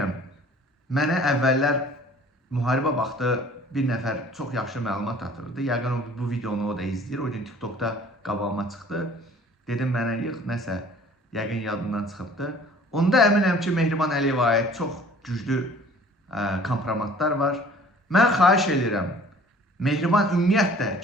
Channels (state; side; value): normal; both; correlation 0.51